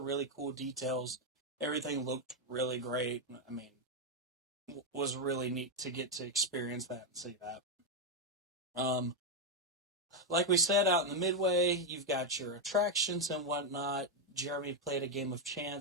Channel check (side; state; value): both; normal; correlation 0.03